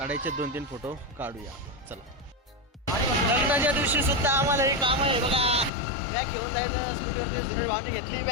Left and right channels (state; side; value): drops out; right; at 5.7 s